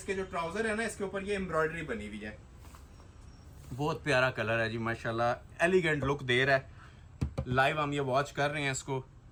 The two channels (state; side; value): identical; both; correlation 1.00